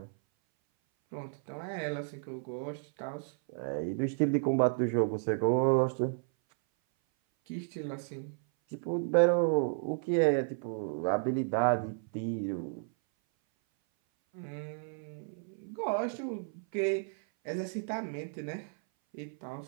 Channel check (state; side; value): silent; left; 56 dB below the other